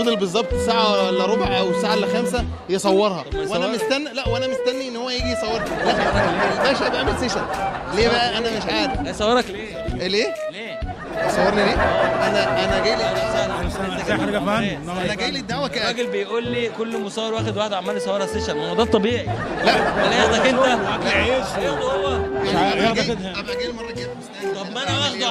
بالظبط ساعه الا ربع او ساعه الا 5 يصورها، وانا مستني ان هو يجي يصورها. لا الباشا بيعمل سيشن ليه بقى؟ انا مش عارف. هيصورك ليه؟ يصورني ليه؟ انا جاي لي انا جاي لي الدعوه الراجل بيقول لي كل مصور واخد واحد عمال يصورها سيشن. ما هو ده الطبيعي. لا ولا ياخدك انت اكل عيش هو ابقى جاي المره الجايه. طب ما انا واخده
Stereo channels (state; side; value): identical; both; correlation 1.00